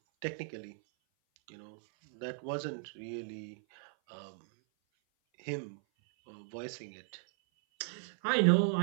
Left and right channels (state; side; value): silent; left; 54 dB below the other